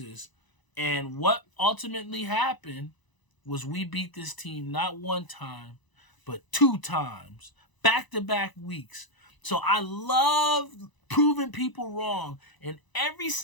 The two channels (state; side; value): late; right; 1.0 ms